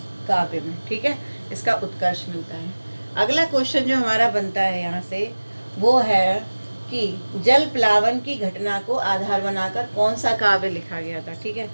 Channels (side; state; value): both; inverted; correlation -1.00